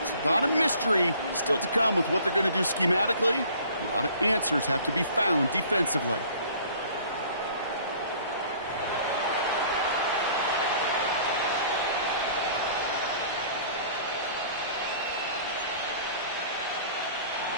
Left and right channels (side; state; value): both; inverted; correlation -0.51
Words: A lot of mystery still to come with what they're going to do schematically. A lot of answers have to be found defensively.